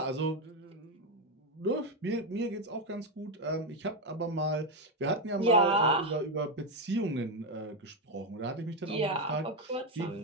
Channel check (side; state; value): both; normal; correlation 0.07